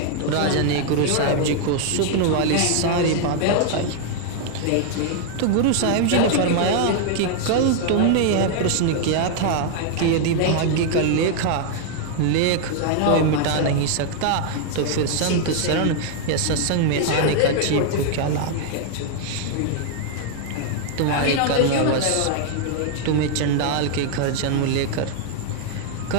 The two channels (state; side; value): different; both; correlation 0.00